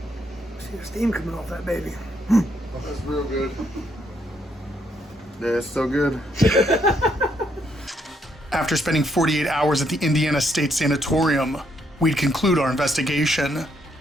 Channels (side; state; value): both; normal; correlation 0.74